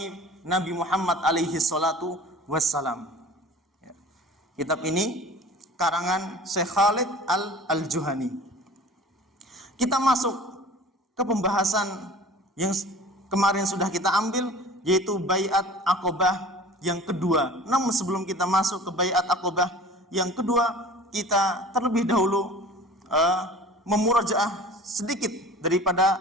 Nabi Muhammad alaihi salatu wassalam. Kitab ini karangan Syekh Khalid Al-Juhani. Kita masuk ke pembahasan yang kemarin sudah kita ambil, yaitu Baiat Aqobah yang kedua. Namun sebelum kita masuk ke Baiat Aqobah yang kedua, kita terlebih dahulu memurajaah sedikit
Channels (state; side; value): normal; both; correlation 0.42